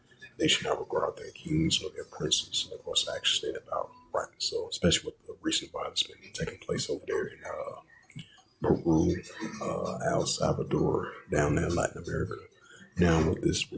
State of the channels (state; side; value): identical; both; correlation 1.00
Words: They should not regard their kings or their princes, and of course, actually state about right. So, especially with the recent violence been taking place over there in Peru, El Salvador, down there in Latin America. Now, with this